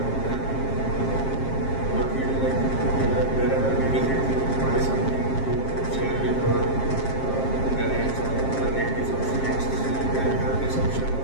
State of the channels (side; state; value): right; late; 7.5 ms